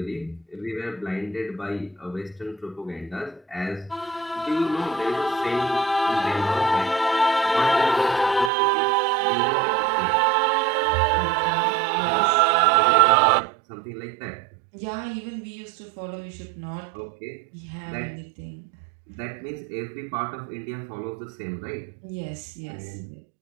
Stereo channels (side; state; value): left; drops out; at 8.5 s